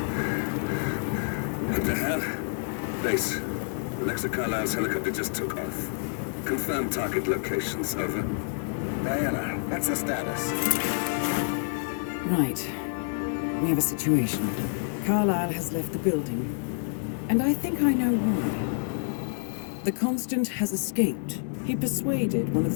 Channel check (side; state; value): right; silent; digital silence